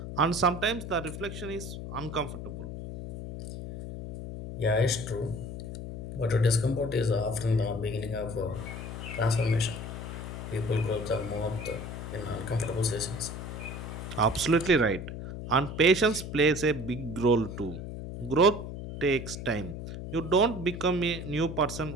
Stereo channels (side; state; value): left; noise; hum, 8 dB below the sound